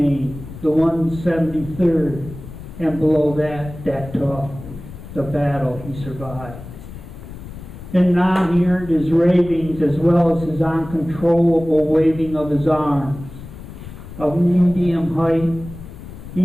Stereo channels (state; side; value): noise; left; rumble, 14 dB below the sound